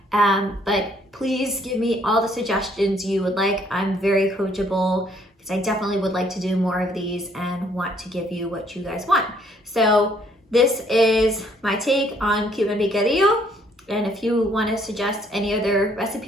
but please give me all the suggestions you would like. I'm very coachable because I definitely would like to do more of these and want to give you what you guys want. So this is my take on Cuban picadillo. And if you want to suggest any other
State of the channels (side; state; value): both; normal; correlation 0.65